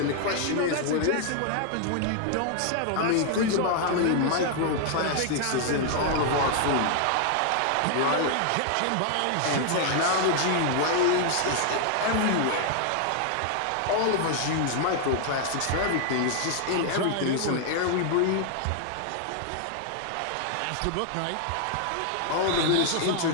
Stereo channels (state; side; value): different; both; correlation 0.00